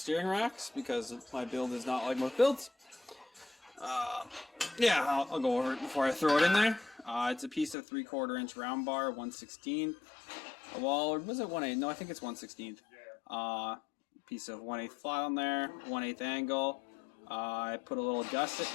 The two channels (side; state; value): right; drops out; at 7.8 s